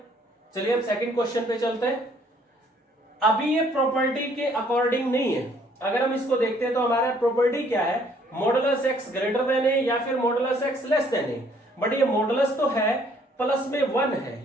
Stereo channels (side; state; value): both; normal; correlation 0.63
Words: चलिए अब सेकंड क्वेश्चन पे चलते हैं। अभी ये प्रॉपर्टी के अकॉर्डिंग नहीं है। अगर हम इसको देखते हैं तो हमारा प्रॉपर्टी क्या है, मॉडुलस x ग्रेटर देन ए या फिर modulus x less than A. But ये मॉडुलस तो है, प्लस में 1 है,